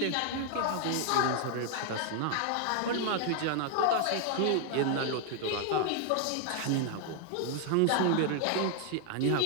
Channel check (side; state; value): both; different; correlation 0.00